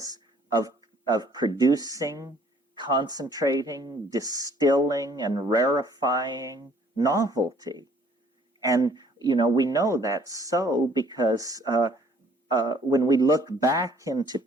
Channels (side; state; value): both; normal; correlation 0.59